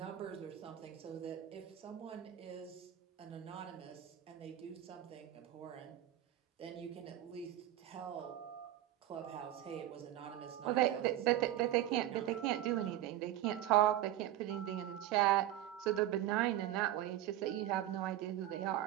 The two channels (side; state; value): left; quieter; 13.2 dB